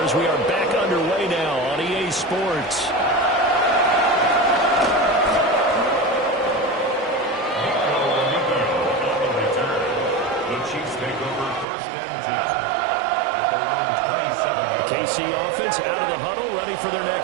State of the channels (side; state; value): left; drops out; at 11.7 s